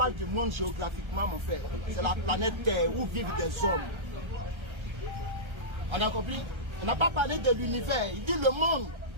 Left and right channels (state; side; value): late; left; 1.3 ms